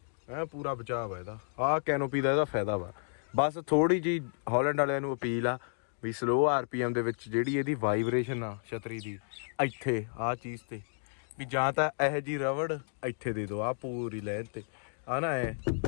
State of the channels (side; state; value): right; silent; digital silence